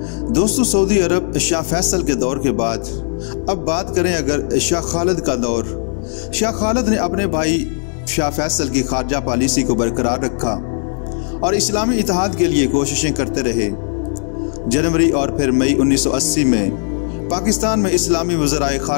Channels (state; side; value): silent; right; digital silence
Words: दोस्तों, सऊदी अरब शाह फैसल के दौर के बाद अब बात करें अगर शाह खालिद का दौर। शाह खालिद ने अपने भाई शाह फैसल की खारजा पॉलिसी को बरकरार रखा और इस्लामी इत्तेहाद के लिए कोशिशें करते रहे। जनवरी और फिर मई 1980 में पाकिस्तान में इस्लामी वज़राए